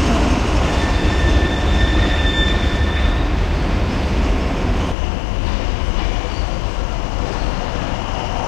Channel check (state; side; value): drops out; right; at 5.0 s